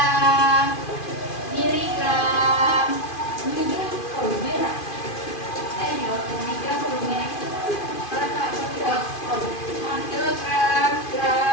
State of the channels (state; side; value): late; right; 2.5 ms